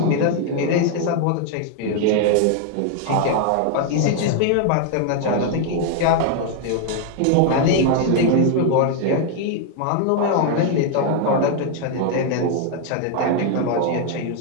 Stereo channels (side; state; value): both; different; correlation 0.00